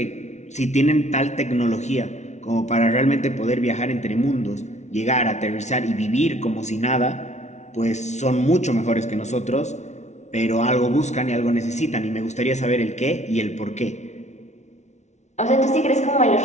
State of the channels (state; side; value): late; right; 0.33 ms